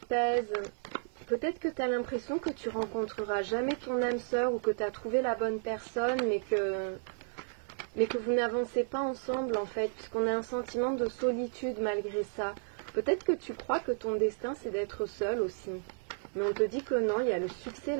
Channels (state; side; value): silent; left; 56 dB below the other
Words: pèse. Peut-être que tu as l'impression que tu rencontreras jamais ton âme sœur ou que tu as trouvé la bonne personne, mais que vous n'avancez pas ensemble en fait, puisqu'on a un sentiment de solitude malgré ça. Peut-être que tu crois que ton destin c'est d'être seul aussi. Mais on te dit que non, il y a le succès,